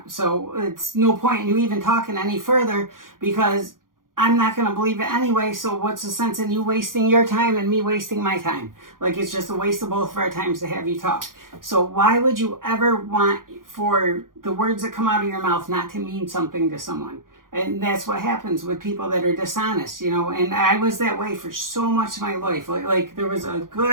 So it's no point in you even talking any further, because I'm not going to believe it anyway. So what's the sense in you wasting your time and me wasting my time? It's just a waste of both of our times to have you talk. So why would you ever want for the words that come out of your mouth not to mean something to someone? And that's what happens with people that are dishonest, and I was that way for so much of my life. There was a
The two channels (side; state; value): left; late; 0.90 ms